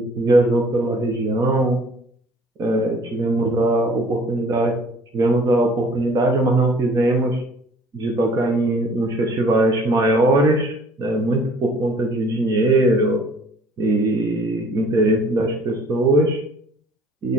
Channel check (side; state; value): both; normal; correlation 0.54